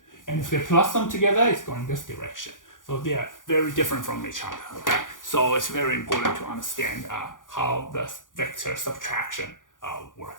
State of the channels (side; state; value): right; late; 0.88 ms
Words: And if they plus them together, it's going this direction. So they are very different from each other. Okay. So it's very important to understand how the vector subtraction